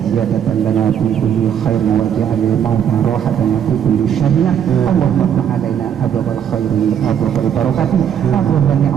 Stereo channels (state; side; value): quieter; left; 8.9 dB